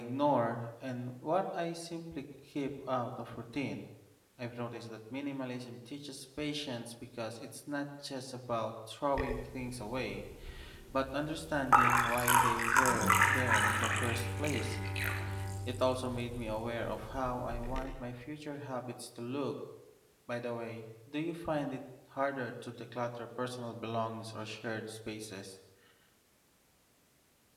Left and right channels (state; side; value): identical; both; correlation 1.00